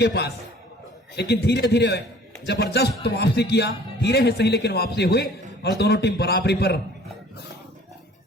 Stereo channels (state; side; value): normal; both; correlation 0.51